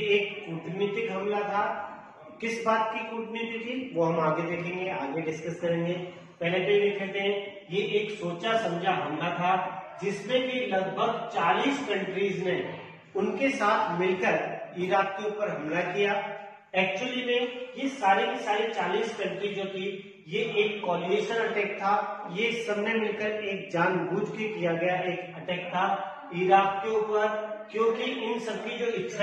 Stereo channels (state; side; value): identical; both; correlation 1.00